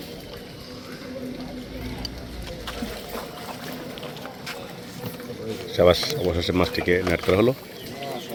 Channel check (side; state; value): both; identical; correlation 1.00